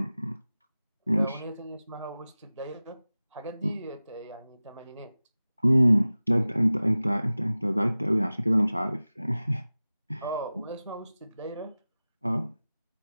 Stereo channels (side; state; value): both; inverted; correlation -0.97